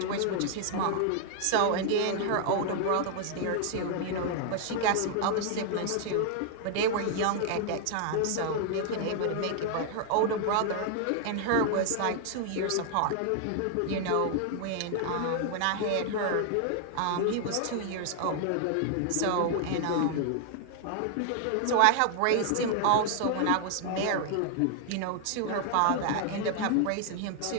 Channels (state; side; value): different; both; correlation 0.00